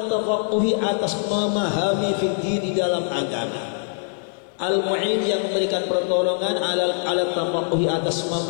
tafaqquhi atas memahami fikih di dalam agama. Al-Mu'in yang memberikan pertolongan ala tafaqquhi atas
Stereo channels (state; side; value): silent; right; 62 dB below the other